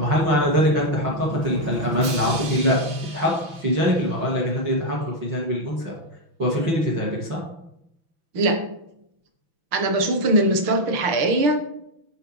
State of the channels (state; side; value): late; left; 6.1 ms